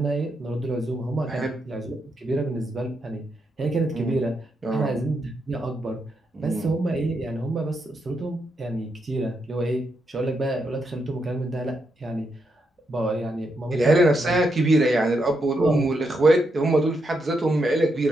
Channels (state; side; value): normal; both; correlation 0.82